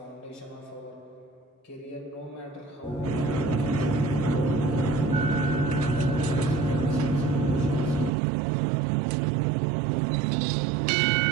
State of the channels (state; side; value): drops out; left; at 8.1 s